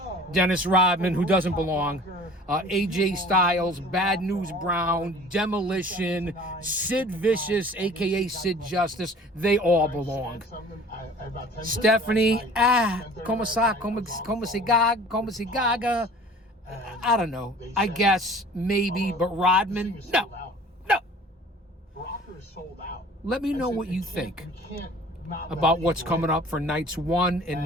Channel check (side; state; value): both; normal; correlation 0.47